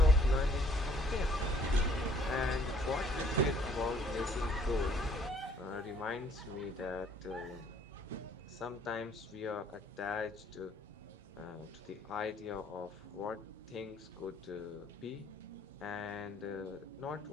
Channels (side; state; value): both; normal; correlation 0.61